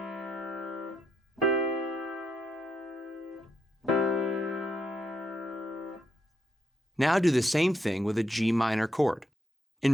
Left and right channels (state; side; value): normal; both; correlation 0.79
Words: Now do the same thing with a G minor chord.